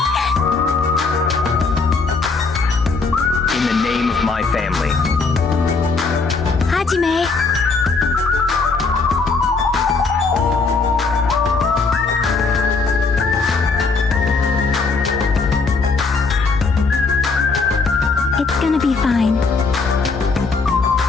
In the name of my family. Hajime! It's gonna be fine.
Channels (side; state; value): right; quieter; 4.2 dB